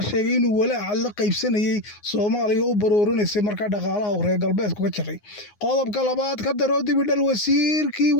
sheegay inuu walaaca la qaybsanayay Soomaaliya u baroorinaysay markaa dhaqaalaha uu reer galbeedku ka jiray. qodobka labaad ka daro dibidhal wasiirkii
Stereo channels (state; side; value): late; right; 9.6 ms